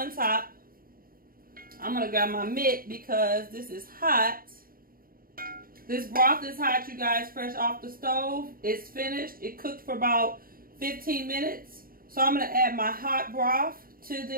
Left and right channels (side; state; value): left; late; 0.42 ms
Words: top. I'm gonna grab my mitt because this is hot. This broth is hot, you guys, fresh off the stove. It's finished. It cooked for about 15 minutes. So I'm gonna add my hot broth to